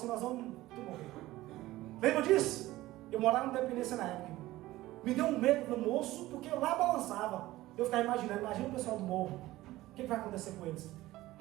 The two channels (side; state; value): left; quieter; 17.0 dB